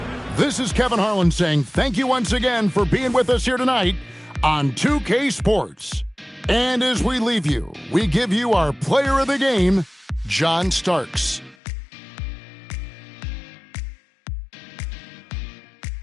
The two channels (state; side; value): drops out; right; at 11.6 s